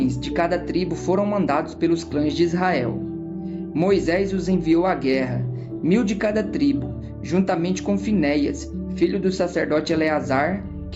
de cada tribo foram mandados pelos clãs de Israel. Moisés os enviou à guerra, 1.000 de cada tribo, juntamente com Finéias, filho do sacerdote Eleazar,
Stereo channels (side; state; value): both; identical; correlation 1.00